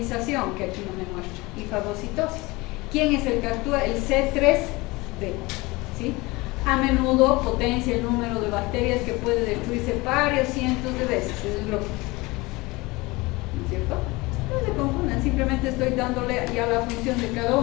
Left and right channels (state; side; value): quieter; right; 22.9 dB